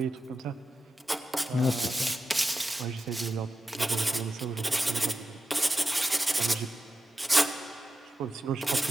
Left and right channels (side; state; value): both; normal; correlation 0.91